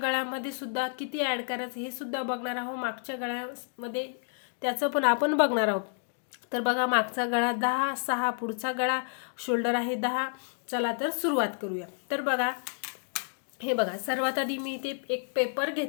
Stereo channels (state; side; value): silent; right; 58 dB below the other